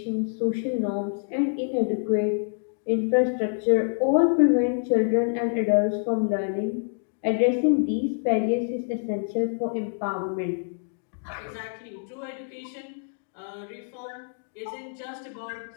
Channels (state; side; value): silent; right; digital silence